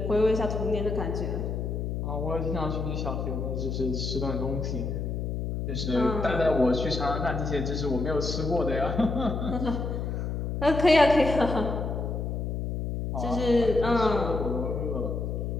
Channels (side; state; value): left; noise; hum, 2 dB below the sound